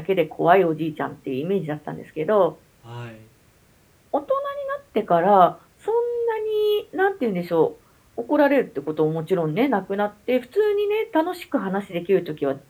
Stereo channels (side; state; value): both; identical; correlation 1.00